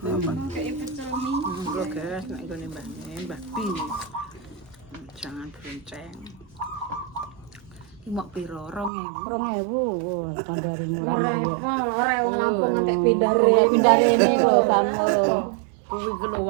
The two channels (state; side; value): drops out; left; at 8.9 s